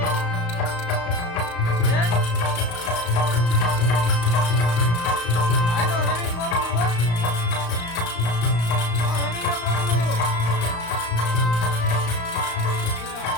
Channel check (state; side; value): late; right; 35 ms